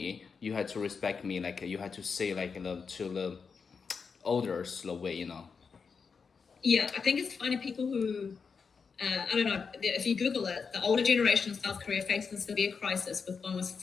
you had to respect me. Like you had to say like to the others the way. Yeah, I think it's funny people who, I don't know, if you Google it, the older generation of South Korea faces a severe crisis with almost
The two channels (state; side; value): quieter; right; 5.5 dB